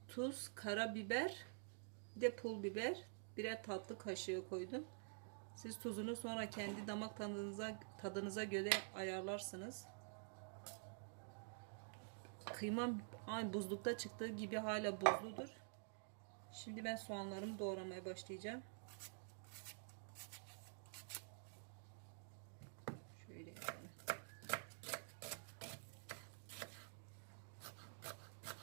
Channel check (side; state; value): left; silent; digital silence